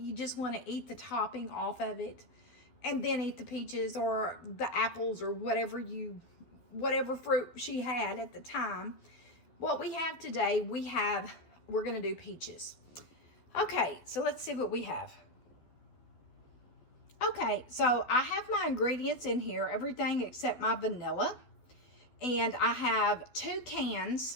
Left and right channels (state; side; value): late; right; 12 ms